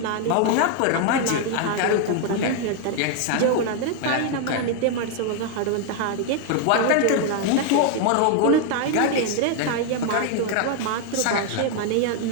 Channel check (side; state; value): both; different; correlation 0.01